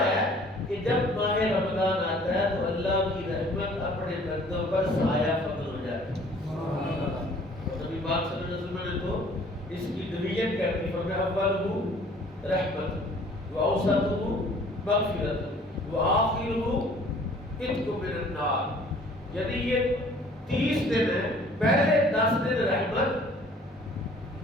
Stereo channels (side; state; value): both; normal; correlation 0.54